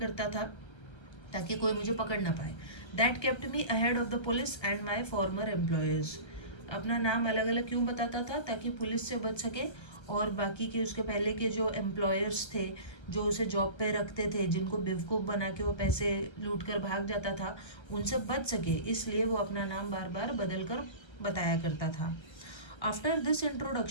था ताकि कोई मुझे पकड़ ना पाए। That kept me ahead of the police and my farmer employers. अपना नाम अलग अलग क्यों बताता था? ताकि पुलिस से बच सके और बाकी के उसके पहले के जो एम्प्लॉयर्स थे, जो उसे जॉब पे रखते थे, जिनको बेवकूफ़ बना के वो पैसे लूट कर भाग जाता था, उनसे बच सके, इसलिए वो अपना नाम बार बार बदल कर बताया करता था। After this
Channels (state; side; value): late; right; 1.3 ms